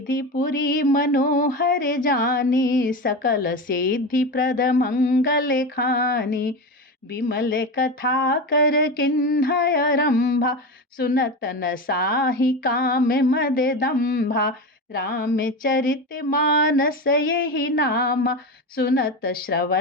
पुरी मनोहर जानी, सकल सिद्धि प्रद मंगल खानी। विमल कथा कर किन्हय रंभा, सुनत न साहि काम मद दंभा। रामचरित मानस यही नाम, सुनत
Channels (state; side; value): normal; both; correlation 0.22